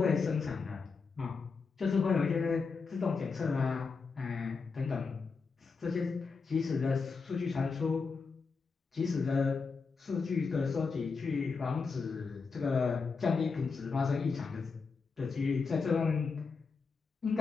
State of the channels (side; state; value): right; quieter; 4.8 dB